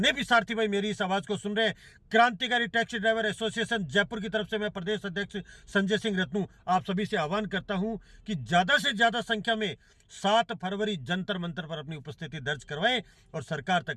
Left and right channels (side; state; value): both; identical; correlation 1.00